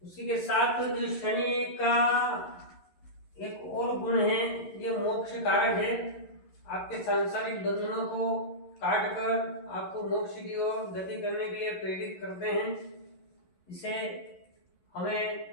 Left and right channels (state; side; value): late; right; 11 ms